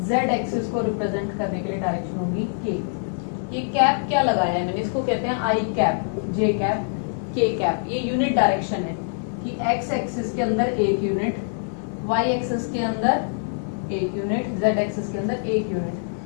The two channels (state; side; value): silent; right; digital silence